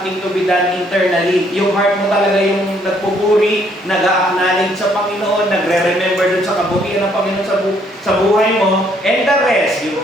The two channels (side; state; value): both; normal; correlation 0.67